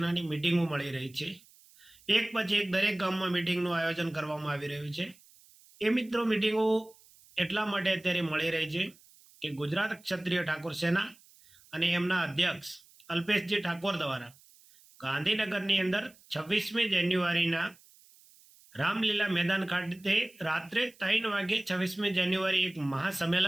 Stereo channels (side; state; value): right; noise; hiss, 27 dB below the sound